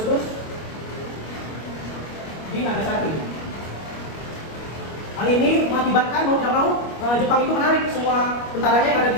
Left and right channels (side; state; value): right; late; 25 ms